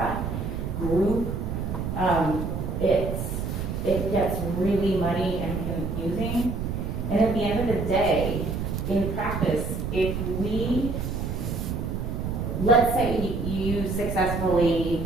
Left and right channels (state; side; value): noise; right; rumble, 3 dB below the sound